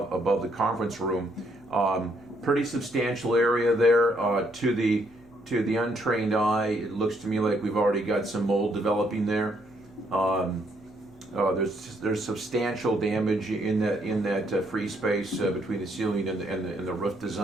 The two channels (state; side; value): noise; left; hum, 29 dB below the sound